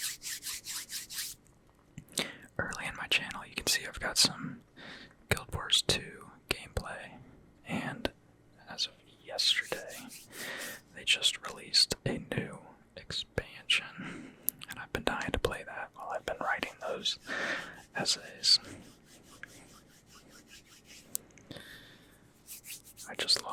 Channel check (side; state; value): both; identical; correlation 1.00